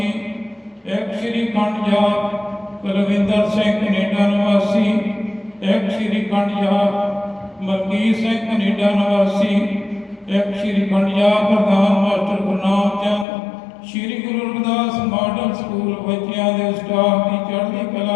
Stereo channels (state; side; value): drops out; right; at 13.2 s